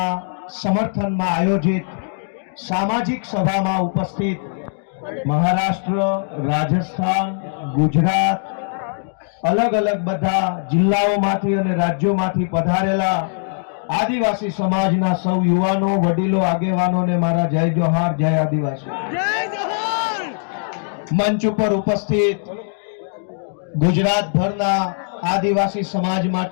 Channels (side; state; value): right; silent; 66 dB below the other